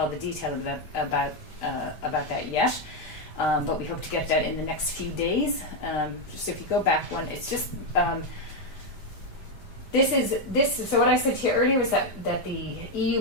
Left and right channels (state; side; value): late; right; 5.1 ms